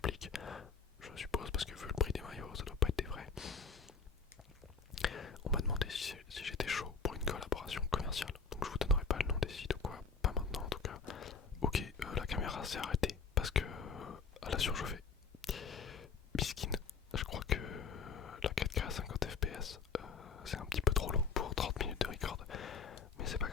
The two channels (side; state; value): right; quieter; 5.4 dB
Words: je suppose, parce que vu le prix des maillots, ça doit pas être des vrais. On m'a demandé si j'étais chaud pour une collaboration commerciale, donc je vous donnerai pas le nom des sites ou quoi, pas maintenant en tout cas. Ok, la caméra s'est arrêtée parce que elle a surchauffé. Biskin, je crois que la 4K à 50 fps c'est un petit peu trop long pour 30 minutes de record, mais c'est pas